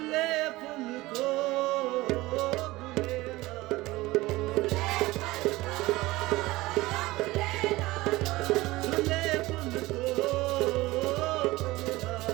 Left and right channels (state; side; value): quieter; left; 19.5 dB